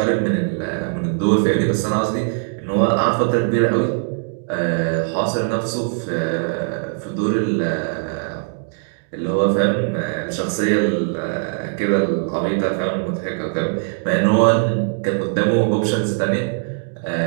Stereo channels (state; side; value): silent; left; digital silence